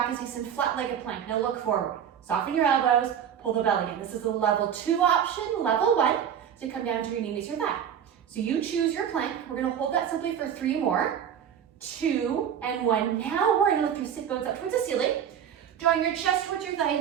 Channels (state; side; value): quieter; left; 8.8 dB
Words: is nice and flat-legged plank. Now look forward, soften your elbows, pull the belly in. This is a level 2 option, level 1, so come down to your knee meets your thigh. So you choose your plank. We're gonna hold that simply for 3 more, 2 and 1. Now we're gonna lift your sit bones up towards the ceiling, drawing your chest towards your thigh